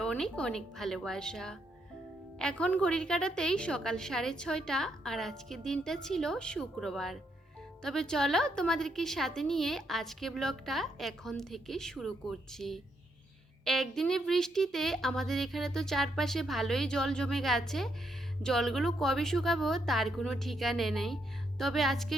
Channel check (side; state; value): both; normal; correlation 0.77